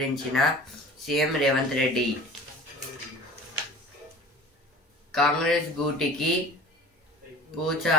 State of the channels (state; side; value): normal; both; correlation 0.41